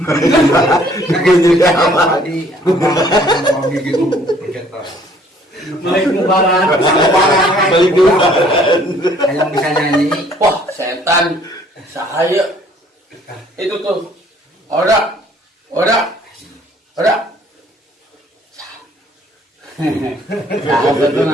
Kagak juga apa tadi. Apa gitu. Pencetak. Balik lebaran. Balik dulu. Yang bisa nyanyi. Wah, setan. Saya. Itu tuh. Ora. Betul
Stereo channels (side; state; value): both; normal; correlation 0.59